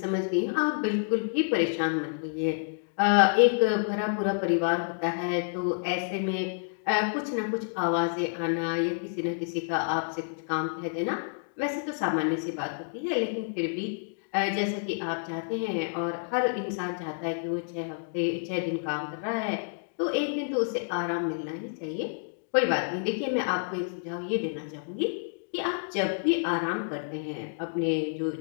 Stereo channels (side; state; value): right; silent; digital silence